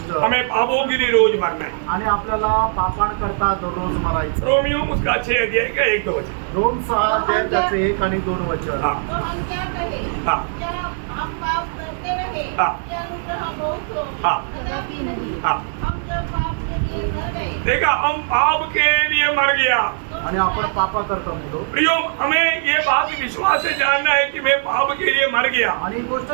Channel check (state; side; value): silent; left; digital silence